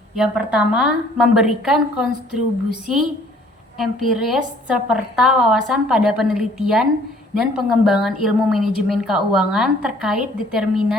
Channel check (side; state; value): both; normal; correlation 0.57